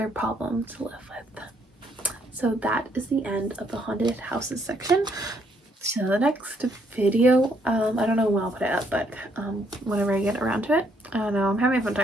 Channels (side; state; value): both; normal; correlation 0.70